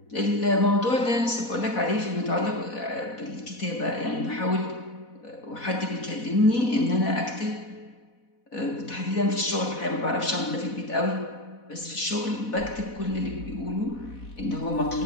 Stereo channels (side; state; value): right; late; 4.1 ms